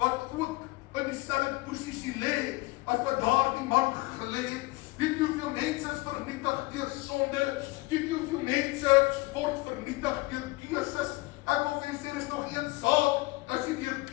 ook in dieselfde posisie lê, as wat daardie man gelê het. Weet jy hoeveel mense is vernietig deur sonde? Weet jy hoeveel mense word vernietig deur keuses? Ek wil vir u sê, is nog een saak, as jy deur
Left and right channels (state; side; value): quieter; right; 22.6 dB